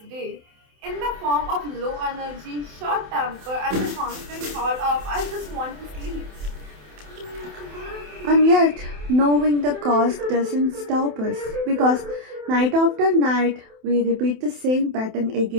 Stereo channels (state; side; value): late; left; 27 ms